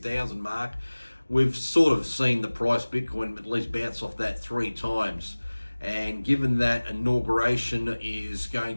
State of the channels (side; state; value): both; inverted; correlation -1.00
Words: mark. We've sort of seen the price Bitcoin at least bounce off that 3 times. And given that inauguration is going